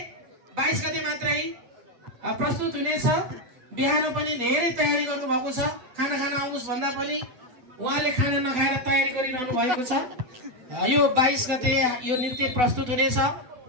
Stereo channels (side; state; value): left; late; 8.2 ms